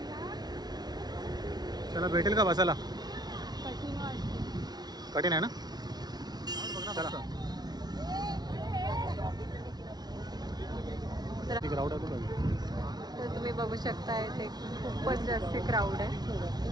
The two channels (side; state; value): left; late; 0.19 ms